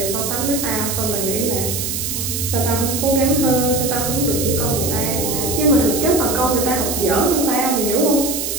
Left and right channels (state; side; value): noise; right; hiss, 3 dB below the sound